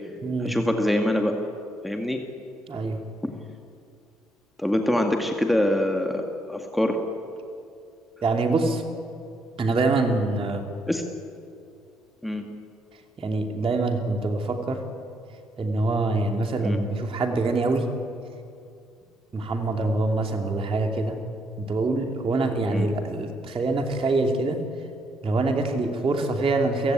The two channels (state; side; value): normal; both; correlation 0.76